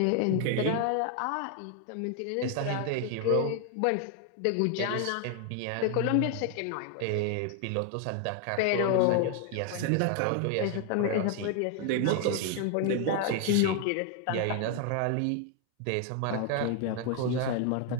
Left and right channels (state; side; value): different; both; correlation 0.00